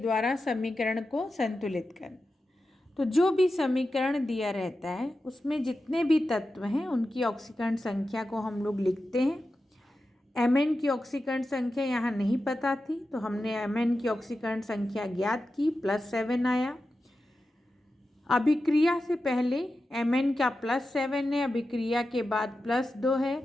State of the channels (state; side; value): normal; both; correlation 0.92